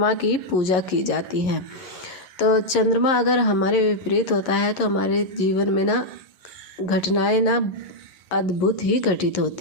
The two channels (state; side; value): late; right; 11 ms